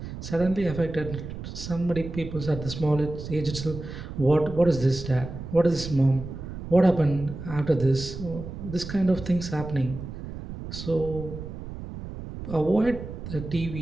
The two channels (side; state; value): right; noise; rumble, 9 dB below the sound